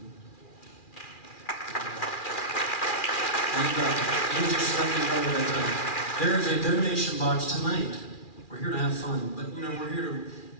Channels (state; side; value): late; right; 2.4 ms